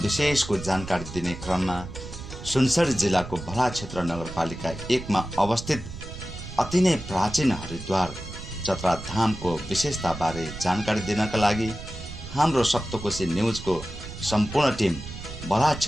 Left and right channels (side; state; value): right; noise; rumble, 11 dB below the sound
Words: जानकारी दिने क्रममा सुनसरी जिल्लाको भला क्षेत्र नगरपालिका 1 मा अवस्थित अति नै प्राचीन हरिद्वार चतरा धामको विशेषताबारे जानकारी दिनका लागि हाम्रो सप्तकोशी न्युजको सम्पूर्ण टिम भला